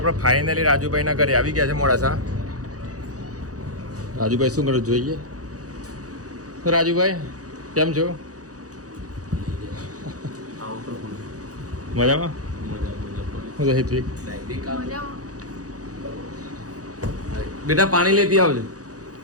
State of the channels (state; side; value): late; left; 0.67 ms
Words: ફાઇનલી રાજુભાઈના ઘરે આવી ગયા છે મોડાસા. રાજુભાઈ શું કરો જોઈએ? રાજુભાઈ કેમ છો? મજામાં? હું હિતવિક. બેટા પાણી લેતી આવજો.